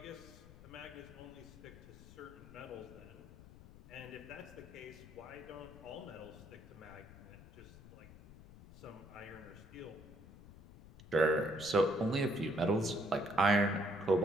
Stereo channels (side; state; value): left; noise; rumble, 18 dB below the sound